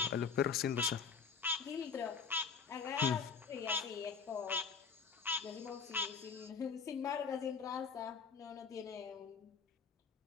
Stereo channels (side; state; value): right; quieter; 5.8 dB